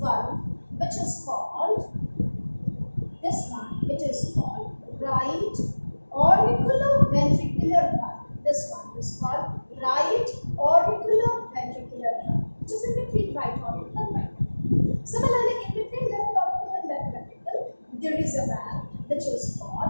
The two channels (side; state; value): both; inverted; correlation -1.00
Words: which is called, this one, it is called right auricular ventricular valve. This one is called right auricular ventricular valve, which is in between right auricle and right ventricle. Similarly, in between left auricle and left ventricle, there is a valve which is